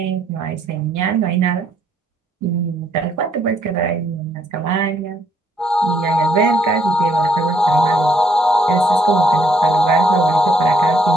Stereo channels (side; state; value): both; normal; correlation 0.69